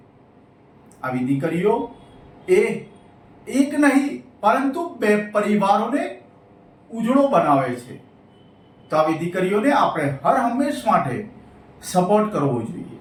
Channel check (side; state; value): both; identical; correlation 1.00